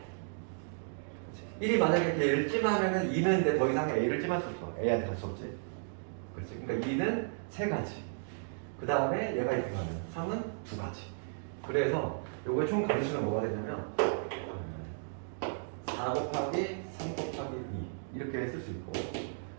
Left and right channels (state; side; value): silent; left; digital silence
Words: 1이 만약에 얘를 찜하면은 2는 이제 더 이상 a를 찜할 수 없어. a한테 갈 수 없지. 그렇지. 그러니까 2는 3가지. 그 다음에 얘가 이렇게 가면 3은 2가지. 그래서 요거의 총 가지수는 뭐가 되냐면 4 곱하기 3 곱하기 2 이렇게 쓸 수 있고